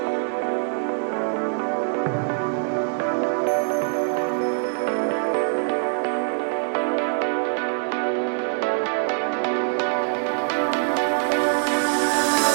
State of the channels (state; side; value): silent; left; 63 dB below the other